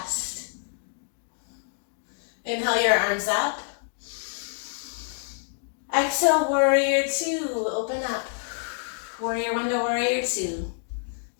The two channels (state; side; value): silent; right; digital silence